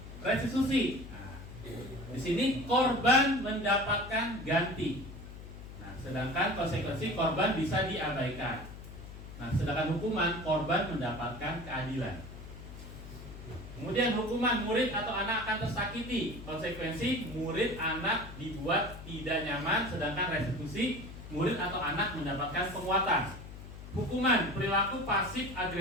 Restitusi, nah, di sini korban mendapatkan ganti. Nah, sedangkan konsekuensi korban bisa diabaikan. Nah, sedangkan hukuman korban mendapatkan keadilan. Kemudian hukuman murid atau anak akan tersakiti. Konsekuensi murid anak dibuat tidak nyaman, sedangkan restitusi murid atau anak mendapatkan penguatan. Hukuman perilaku pasif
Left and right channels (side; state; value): left; noise; hum, 13 dB below the sound